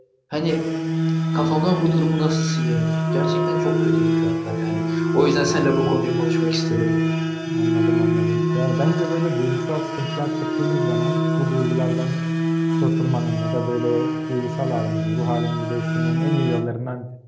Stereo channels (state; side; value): identical; both; correlation 1.00